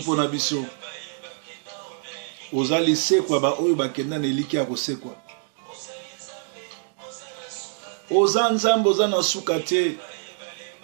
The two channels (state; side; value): silent; left; digital silence